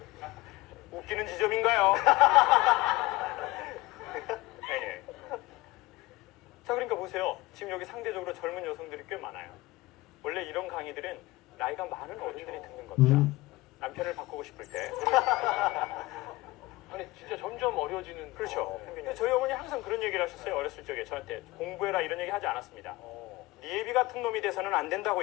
웃기는 지점인가요? 네. 자, 그러니까 보세요. 지금 여기 상대적으로 젊은 여성들이 꽤 많아요. 원래 이런 강의들은 나이가 많은 어른들이 듣는 겁니다. 남편을 바꾸고 싶을 때. 아니, 진짜 점점 어려지는. 그렇죠. 근데 저희 어머니 항상 그런 얘기를 하셨어요. 어렸을 적에 저한테 공부해라 이런 얘기 하지 않았습니다. 니애비 같은 놈이 돼서는 안 된다고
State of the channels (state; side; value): quieter; right; 20.1 dB